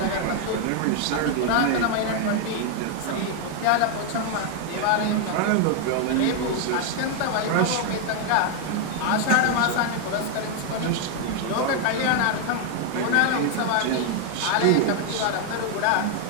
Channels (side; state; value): both; different; correlation 0.01